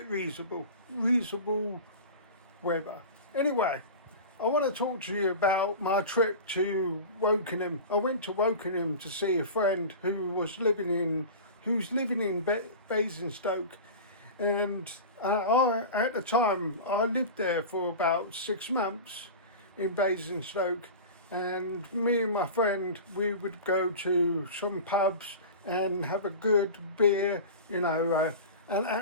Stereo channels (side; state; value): both; inverted; correlation -0.32